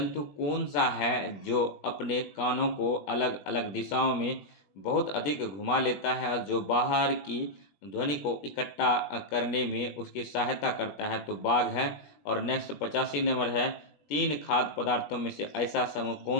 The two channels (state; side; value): late; right; 21 ms